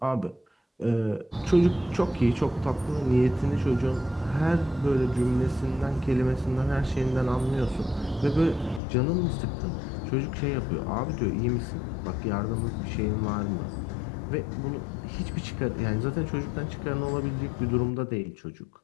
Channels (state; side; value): drops out; right; at 8.8 s